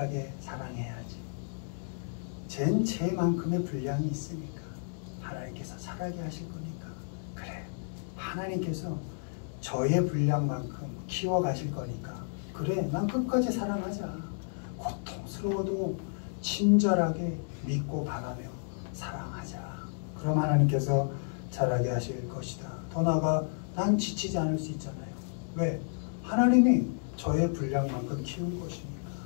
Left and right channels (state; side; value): silent; right; digital silence